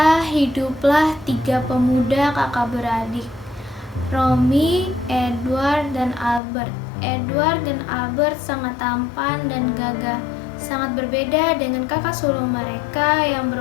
hiduplah 3 pemuda kakak beradik, Romy, Edward, dan Albert. Edward dan Albert sangat tampan dan gagah, sangat berbeda dengan kakak sulung mereka yang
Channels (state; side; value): drops out; right; at 6.4 s